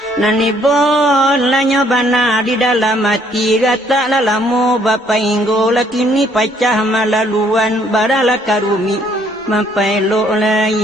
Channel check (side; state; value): both; normal; correlation 0.65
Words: Nanibon lanyo bana di dalam hati gata lalamu bapa inggo lakini pacah malaluan barala karumi mapailo